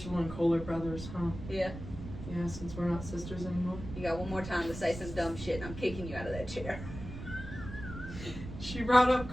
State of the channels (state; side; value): noise; right; rumble, 10 dB below the sound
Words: and Cole are brothers, huh? Yeah. Yeah, since we're not sisters anymore. You got one more time to say some dumb shit and I'm kicking you out of that chair. She brought up